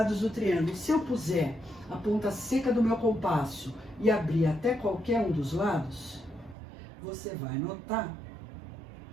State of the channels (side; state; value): left; drops out; at 6.6 s